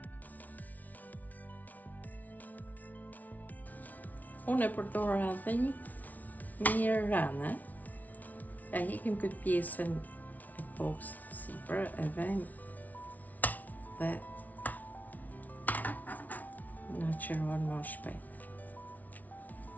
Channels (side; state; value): right; late; 0.076 ms